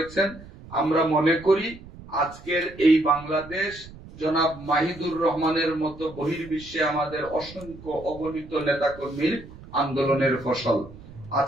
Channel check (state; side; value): noise; right; rumble, 18 dB below the sound